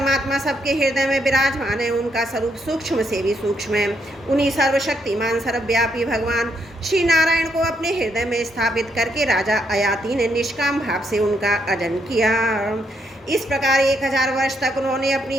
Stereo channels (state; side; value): normal; both; correlation 0.76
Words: सबके हृदय में विराजमान है। उनका स्वरूप सूक्ष्म से भी सूक्ष्म है। उन्हीं सर्वशक्तिमान सर्वव्यापी भगवान श्री नारायण को अपने हृदय में स्थापित करके राजा आयाती ने निष्काम भाव से उनका अजन किया। इस प्रकार 1000 वर्ष तक उन्होंने